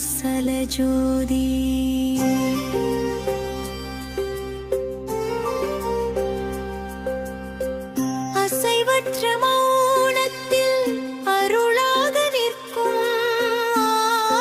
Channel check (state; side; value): identical; both; correlation 1.00